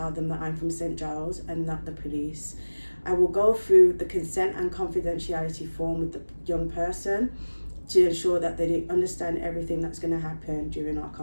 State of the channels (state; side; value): inverted; both; correlation -1.00